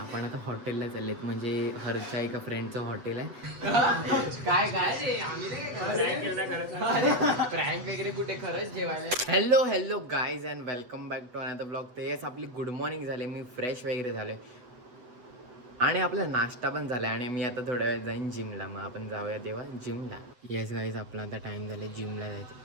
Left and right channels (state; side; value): late; left; 8.0 ms